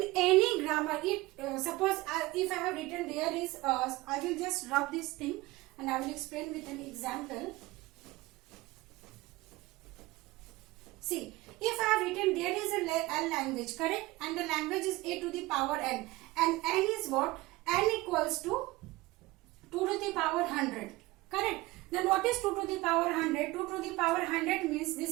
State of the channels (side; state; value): left; quieter; 20.2 dB